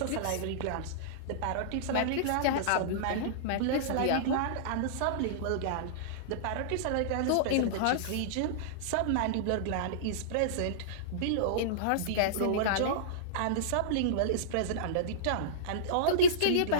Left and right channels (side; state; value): both; different; correlation -0.03